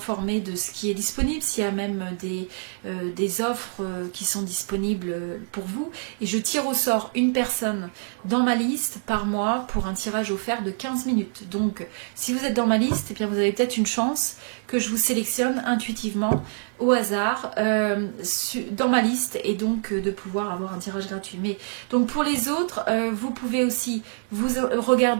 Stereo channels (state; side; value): silent; left; 61 dB below the other